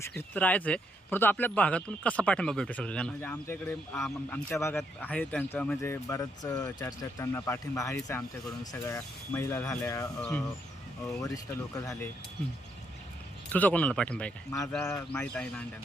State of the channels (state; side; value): normal; both; correlation 0.75